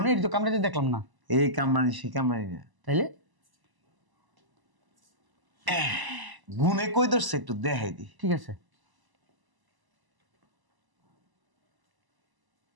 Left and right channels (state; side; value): late; left; 1.0 ms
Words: তো কামড়াইতে দেখলাম না। এই কামরানি সে কামরানি না, তাইলে গুনে কই ধরছে একটু দেখাই দি। ঠিক আছে।